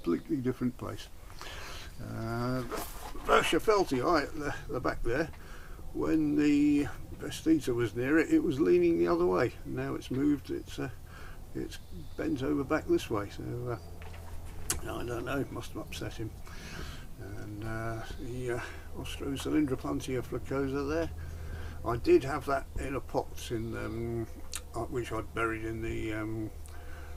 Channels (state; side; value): identical; both; correlation 1.00